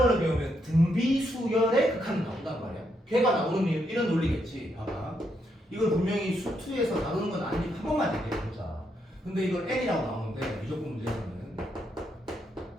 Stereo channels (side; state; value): both; normal; correlation 0.78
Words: 배우면 등비수열의 극한이 나온단 말이야. 걔가 나오는 이유는 이런 논리겠지. 봐봐. 이걸 분명히 수투에서 다루는 건 아니니까 한 번만 얘기해보자. 근데 이걸 n이라고 나오는데 미적분 문제에서는